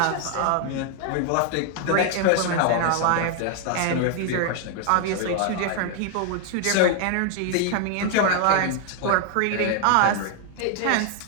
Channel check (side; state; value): both; different; correlation 0.00